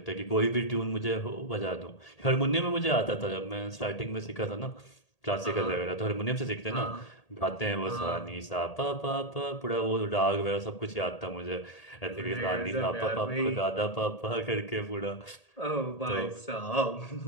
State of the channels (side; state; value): right; late; 1.8 ms